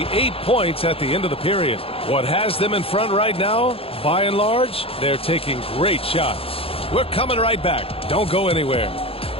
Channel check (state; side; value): late; right; 0.27 ms